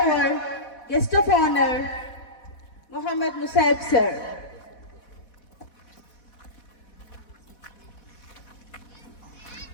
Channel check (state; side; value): late; right; 4.1 ms